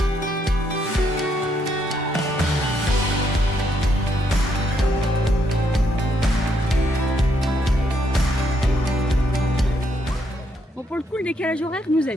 Bon, pour le coup, le décalage horaire nous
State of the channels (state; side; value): normal; both; correlation 0.75